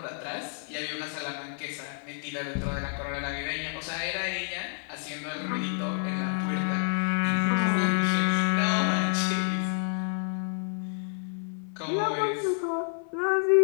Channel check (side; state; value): right; silent; 57 dB below the other